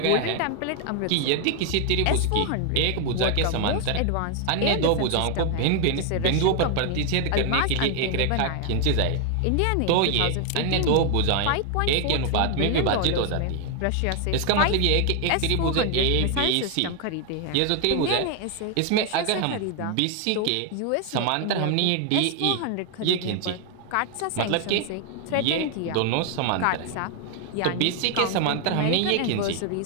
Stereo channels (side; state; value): both; different; correlation 0.00